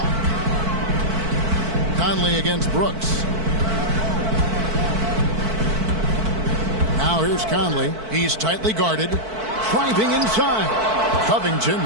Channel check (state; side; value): late; left; 4.5 ms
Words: Conley against Brooks. Now here's Conley. He's tightly guarded. Driving inside. Covington